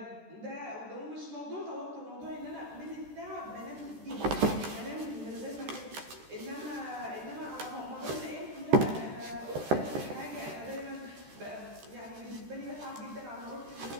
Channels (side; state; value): left; late; 13 ms